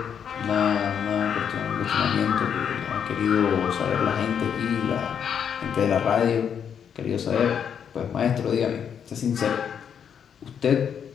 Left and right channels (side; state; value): right; quieter; 7.9 dB